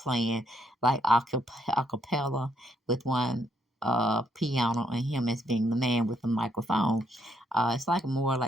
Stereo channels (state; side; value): normal; both; correlation 0.73